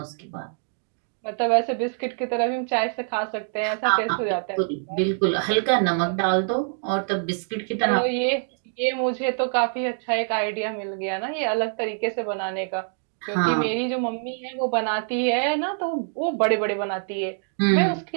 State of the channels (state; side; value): silent; left; digital silence